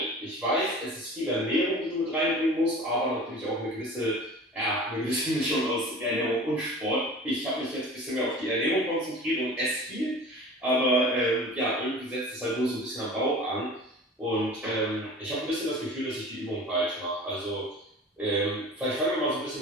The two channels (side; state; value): both; normal; correlation 0.40